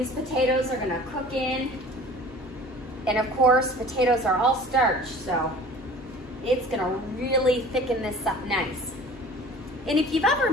potatoes are gonna cook in, and of course, potatoes are all starch, so it's gonna really thicken this up nice. And if you've ever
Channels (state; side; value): normal; both; correlation 0.44